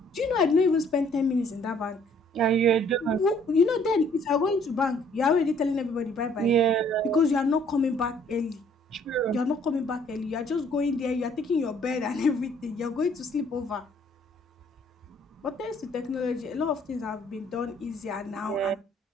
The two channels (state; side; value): normal; both; correlation 0.61